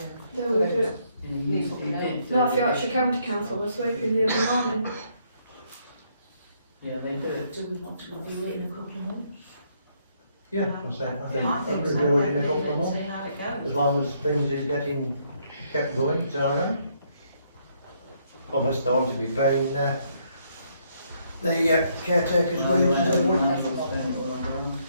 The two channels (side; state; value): both; inverted; correlation -0.71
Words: They will do it. North Yorkshire County Council was sweeping the other morning. Yeah, they do. Do we want to review it in a couple of months? Yeah, I think so. review it in a couple of months. See how it goes. As long as things is getting kept going, it's alright. Unless they want to be paying the caretaker's wages as well.